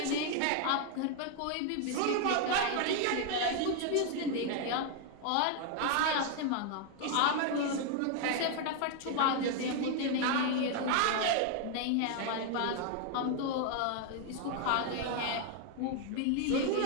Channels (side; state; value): both; different; correlation 0.00